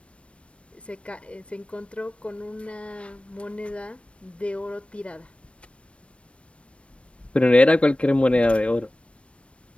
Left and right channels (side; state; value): right; late; 0.061 ms